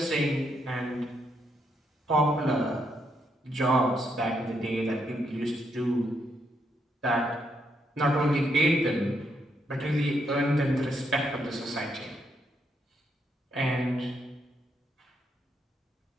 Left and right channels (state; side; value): normal; both; correlation 0.77